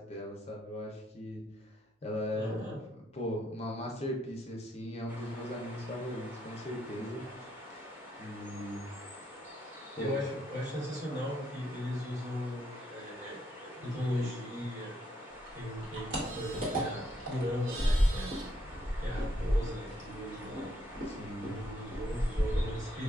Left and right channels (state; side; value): normal; both; correlation 0.74